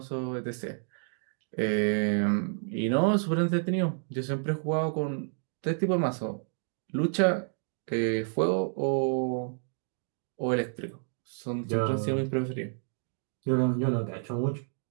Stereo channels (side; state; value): left; silent; 58 dB below the other